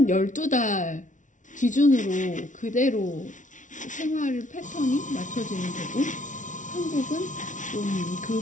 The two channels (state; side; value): late; right; 0.37 ms